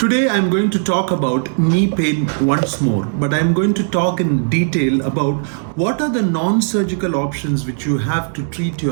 I'm going to talk about knee pain once more, but I'm going to talk in detail about what are the non-surgical options which you have to treat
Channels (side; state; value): left; silent; digital silence